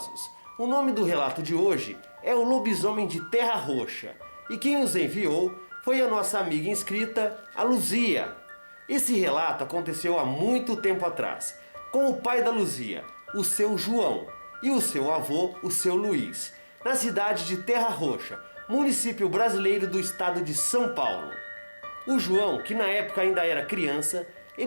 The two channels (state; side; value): inverted; both; correlation -1.00